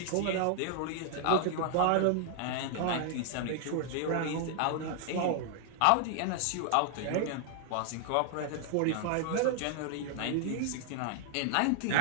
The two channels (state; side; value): different; both; correlation 0.00